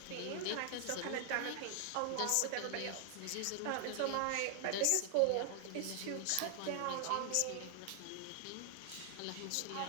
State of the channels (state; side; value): different; both; correlation 0.00